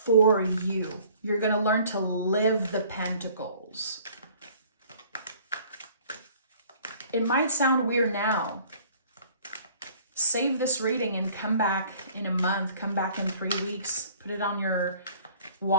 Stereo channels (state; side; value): inverted; both; correlation -0.54